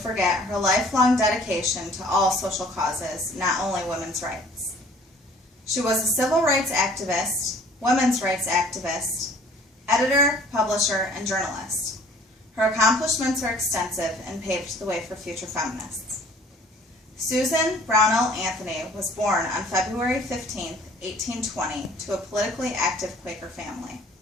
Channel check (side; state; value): both; normal; correlation 0.53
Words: her lifelong dedication to all social causes, not only women's rights. She was a civil rights activist, women's rights activist, editor, publisher, and journalist. Her accomplishments are extensive and paved the way for future feminists. Susan Brownell Anthony was born on February 15, 1820, to a politically active Quaker family.